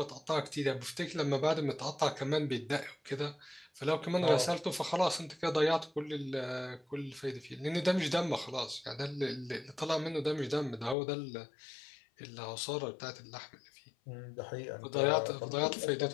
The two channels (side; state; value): right; drops out; at 11.0 s